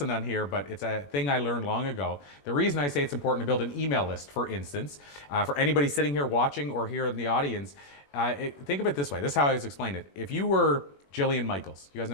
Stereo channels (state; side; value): late; right; 21 ms